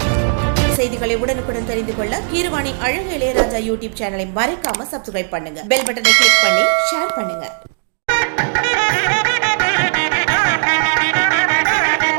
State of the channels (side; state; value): left; silent; digital silence